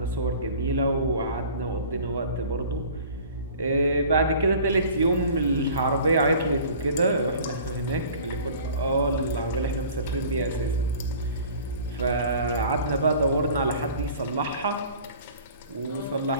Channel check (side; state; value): both; inverted; correlation -0.46